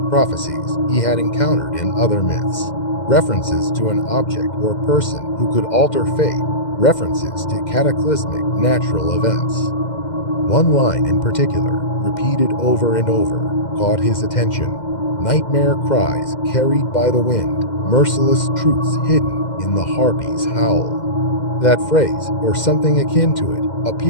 prophecies he had encountered in other myths, references to an object or person who could alter fate, references to cataclysmic natural events. One line in particular, repeated over and over: caught his attention. Nightmare cries carried by the wind, merciless truths hidden in the Harpy's howl. That phrase, or something akin to it,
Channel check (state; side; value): late; right; 2.1 ms